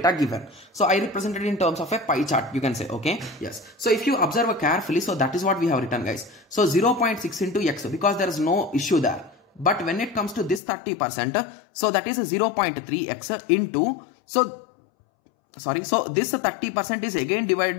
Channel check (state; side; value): drops out; right; at 10.6 s